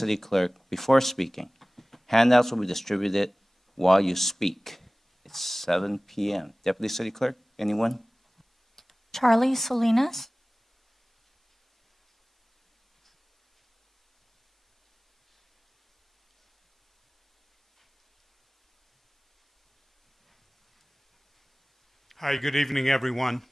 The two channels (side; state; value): both; normal; correlation 0.98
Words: Clerk before speaking. Handouts will be distributed while you speak. It's 7 p.m. Deputy City Clerk, anyone? Charlie Salinas. Hi, good evening, everyone.